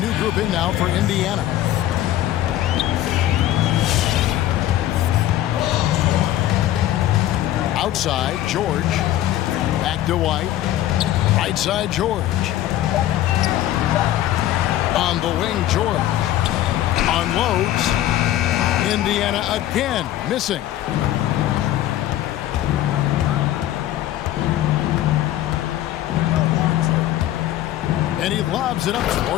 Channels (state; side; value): quieter; right; 13.3 dB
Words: group in now for Indiana. Outside, George. Back to White. Right side, George. On the wing, George. Unloads. Indiana again, missing. And he lobs it up